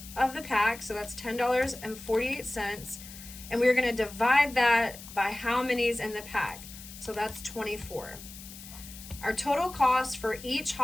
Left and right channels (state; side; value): noise; left; hiss, 15 dB below the sound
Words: of the pack, so that's $10.48, and we're gonna divide that by how many's in the pack. So that's 24. Our total cost for each